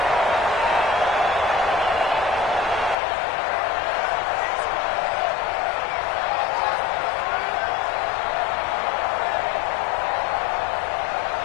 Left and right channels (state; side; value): drops out; right; at 3.0 s